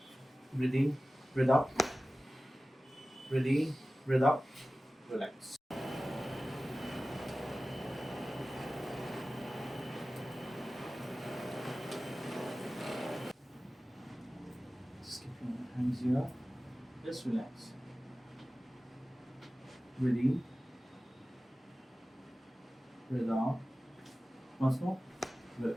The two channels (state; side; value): normal; both; correlation 0.96